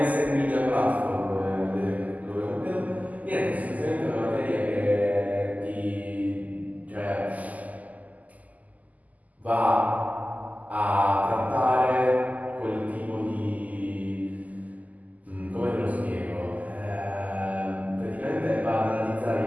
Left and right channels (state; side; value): late; left; 0.077 ms